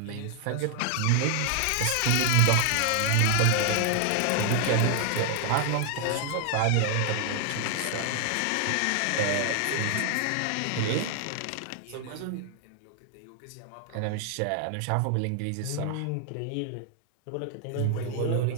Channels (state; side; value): different; both; correlation 0.00